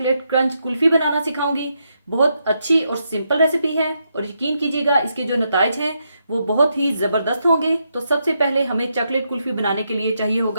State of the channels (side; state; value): both; inverted; correlation -0.81